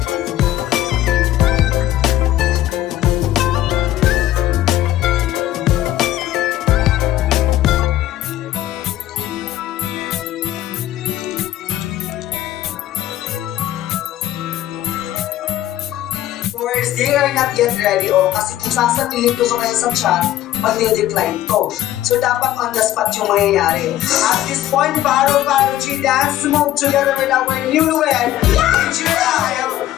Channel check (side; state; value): right; quieter; 13.5 dB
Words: Or they are not yet ready o kasi kung sasabihin ko sa kayo sa chat, mag-decline ko. So dapat on the spot yung mangyayari. At this point, Paro G dance move together with our newlywed, ChrisGela